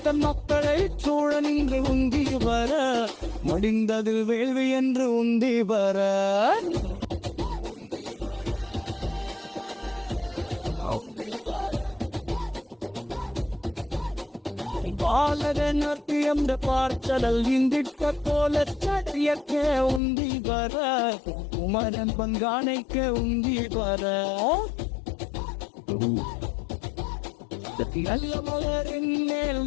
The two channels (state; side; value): drops out; right; at 20.0 s